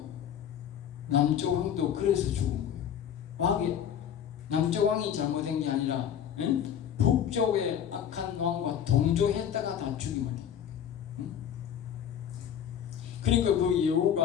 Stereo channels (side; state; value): right; quieter; 9.1 dB